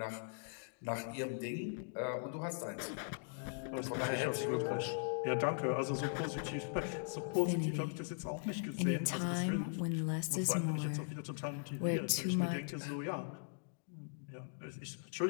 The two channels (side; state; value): right; silent; digital silence